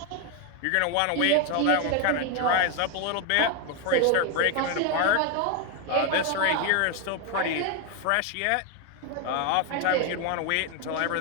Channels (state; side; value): different; both; correlation 0.01